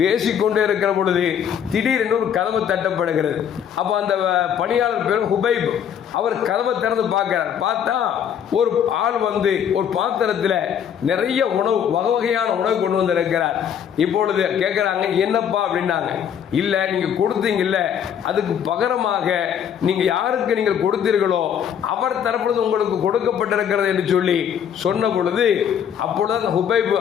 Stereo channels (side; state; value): right; quieter; 8.6 dB